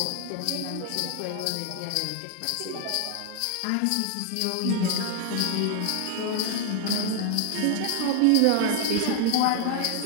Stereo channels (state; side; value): different; both; correlation 0.00